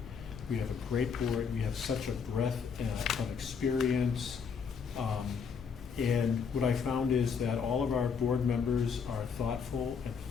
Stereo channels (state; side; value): quieter; right; 6.2 dB